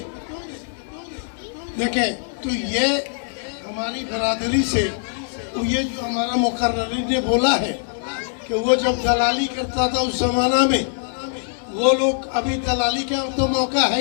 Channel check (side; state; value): right; silent; digital silence